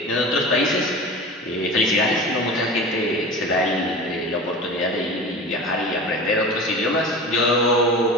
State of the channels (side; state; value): both; normal; correlation 0.34